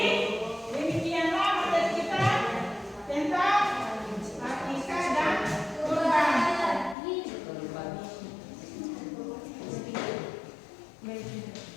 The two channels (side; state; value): right; drops out; at 7.0 s